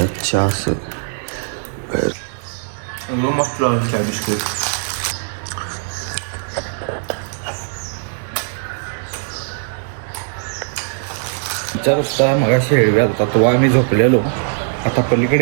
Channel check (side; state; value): left; silent; digital silence